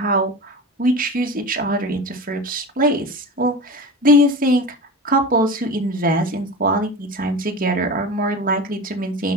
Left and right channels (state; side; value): normal; both; correlation 0.30